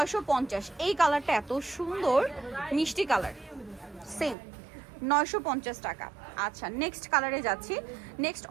এই কালারটা এত সুন্দর মিষ্টি কালার, সেম 950 টাকা। আচ্ছা, নেক্সট কালারে যাচ্ছি। নেক্সট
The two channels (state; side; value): drops out; left; at 4.4 s